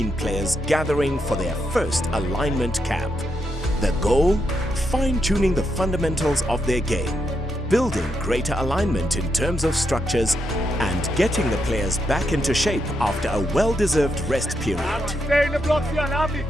players gathering for their first alignment camp. The goal? Fine-tuning the fundamentals of their game, building greater alignment in terms of structures and getting the players back into shape after a well-deserved rest period. You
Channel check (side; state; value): both; normal; correlation 0.82